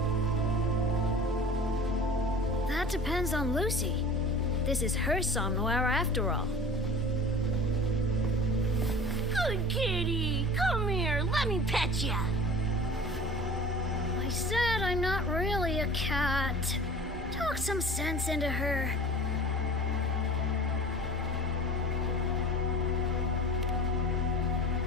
That depends on Lucy. This is her somnowhere after all. Good kitty, come here, let me pet ya. I said I'm not really a cat. Talk some sense into her.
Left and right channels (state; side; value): normal; both; correlation 0.42